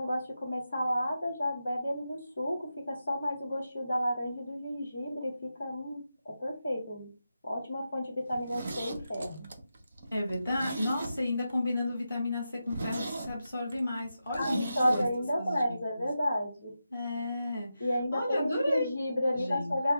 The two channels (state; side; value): inverted; both; correlation -0.89